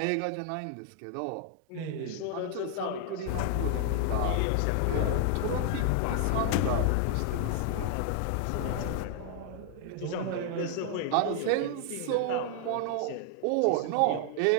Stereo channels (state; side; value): different; both; correlation 0.00